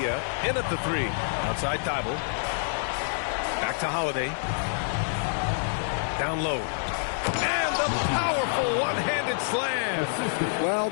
in at the 3. Outside Thybulle. Back to Holiday. Down low. And the powerful one-handed slam. Well,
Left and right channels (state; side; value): silent; right; digital silence